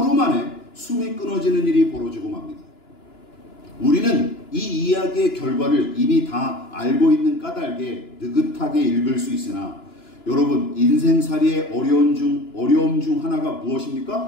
만에 숨이 끊어지는 일이 벌어지고 맙니다. 우리는 이 이야기의 결과를 이미 다 알고 있는 까닭에 느긋하게 읽을 수 있으나 여러분, 인생살이의 어려움 중 하나가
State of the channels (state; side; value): late; right; 2.9 ms